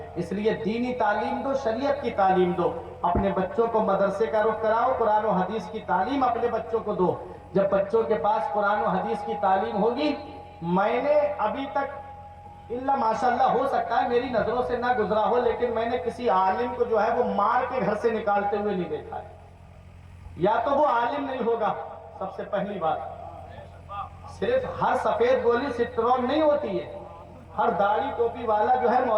اس لیے دینی تعلیم دو، شریعت کی تعلیم دو۔ اپنے بچوں کو مدرسے کا رخ کراؤ، قرآن و حدیث کی تعلیم اپنے بچوں کو دو۔ جب بچوں کے پاس قرآن و حدیث کی تعلیم ہوگی، میں نے ابھی تک اللہ ماشاءاللہ ہو سکتا ہے میری نظروں سے نہ گزرا ہو، لیکن میں نے کسی عالم کو جو ہے وہ مار کے گھر سے نکالتے ہوئے نہیں دیکھا ہے۔ یا تو وہ عالم نہیں ہوگا، سب سے پہلی بات۔ صرف ہر سفید گولی سٹرون نہیں ہوتی ہے، ہر داڑھی ٹوپی والا جو ہے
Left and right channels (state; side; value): identical; both; correlation 1.00